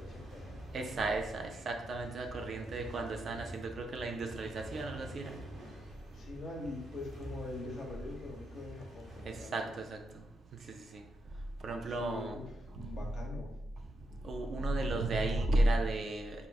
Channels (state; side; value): normal; both; correlation 0.84